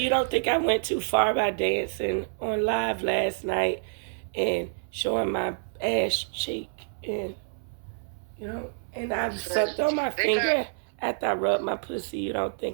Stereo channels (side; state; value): left; silent; 60 dB below the other